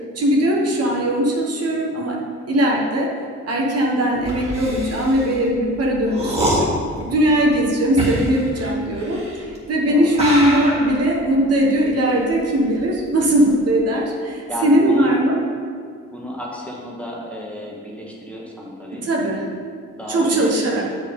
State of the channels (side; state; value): both; normal; correlation 0.42